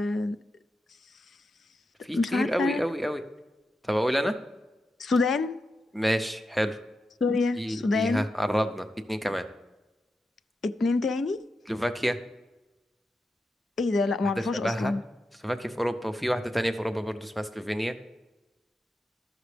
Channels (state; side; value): normal; both; correlation 0.88